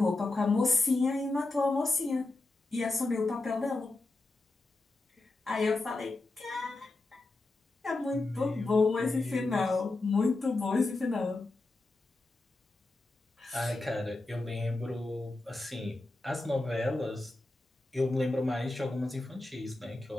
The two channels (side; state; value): right; quieter; 3.0 dB